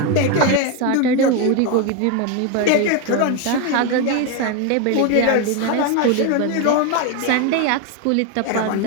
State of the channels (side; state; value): both; different; correlation 0.02